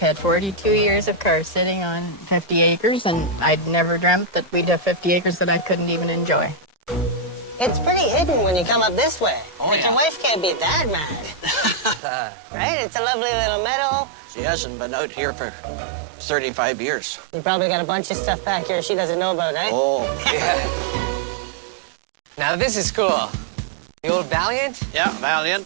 42 years of cars sitting on 50 acres, and I'd never dreamt that we'd have 50 acres that I couldn't even enjoy. It's pretty hidden when you come up this way. Oh, but yeah. your wife can't be that mad. Right? It's a lovely little meadow. She hasn't been out here for 35 years. You probably got a bunch of stuff back here she doesn't know about, eh? Oh, Now this is cool. The old Valiant? yeah, Valiant.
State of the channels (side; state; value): left; drops out; at 12.0 s